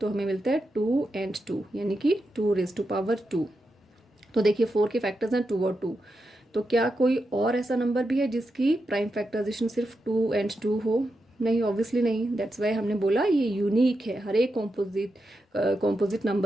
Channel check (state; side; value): normal; both; correlation 0.87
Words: हमें मिलता है 2 and 2, यानी कि 2⁻²2। तो देखिए 4 के फैक्टर्स हैं 2 और 2। तो क्या कोई और ऐसा नंबर भी है जिसकी प्राइम फैक्टराइजेशन सिर्फ 2 and 2 हो? नहीं, ऑब्वियसली नहीं। दैट्स वाई हमने बोला ये यूनिक है। हर एक कॉम्पोजिट